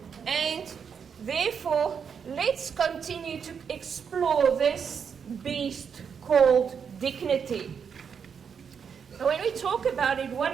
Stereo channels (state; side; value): quieter; left; 6.8 dB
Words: and therefore, let's continue to explore this beast called dignity. So when we talk about it,